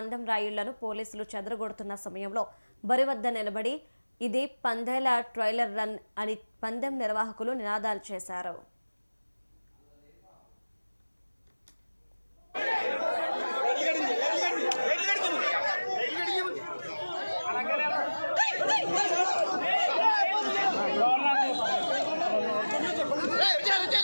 రాయుళ్లను పోలీసులు చెదరగొడుతున్న సమయంలో బరి వద్ద నిలబడి ఇది పందేల ట్రైలర్ రన్ అని పందెం నిర్వాహకులు నినాదాలు చేశారు.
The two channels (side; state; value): both; inverted; correlation -1.00